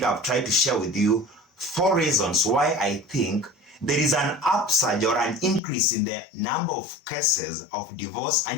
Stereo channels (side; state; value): right; drops out; at 5.6 s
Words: I've tried to share with you 4 reasons why I think there is an upsurge or an increase in the number of cases of divorce